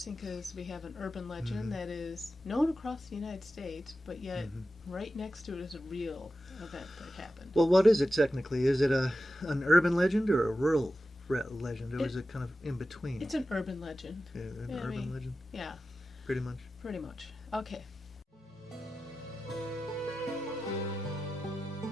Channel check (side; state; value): both; normal; correlation 0.93